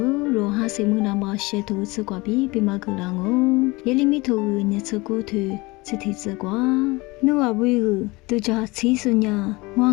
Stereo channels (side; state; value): right; quieter; 23.5 dB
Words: 哈是么那么些头吃瓜比嘛个啷哦，也里面头你吃过头。这题子瓜，你话为个都叫七十年，我